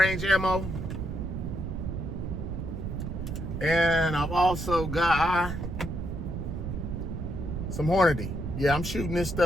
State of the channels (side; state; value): right; noise; rumble, 4 dB below the sound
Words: ammo. And I've also got some Hornady. Yeah, I'm shooting this